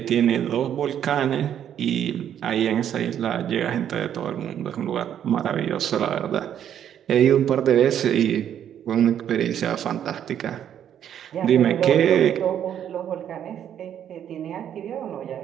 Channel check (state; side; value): quieter; left; 9.8 dB